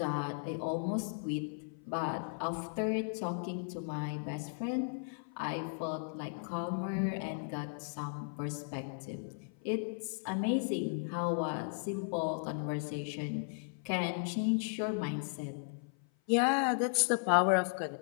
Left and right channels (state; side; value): silent; right; 54 dB below the other